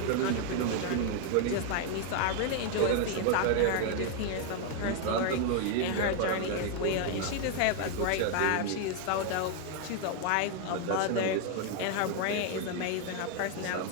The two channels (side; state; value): both; different; correlation 0.01